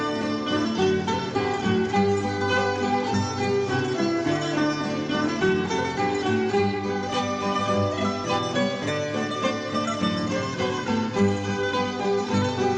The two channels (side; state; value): both; identical; correlation 1.00